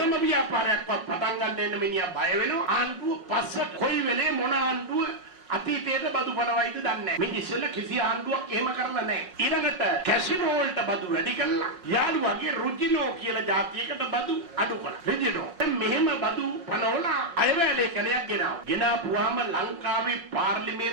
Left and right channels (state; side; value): late; left; 5.5 ms